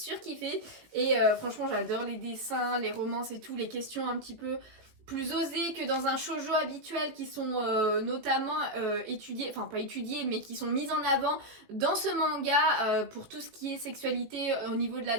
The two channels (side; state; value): left; late; 18 ms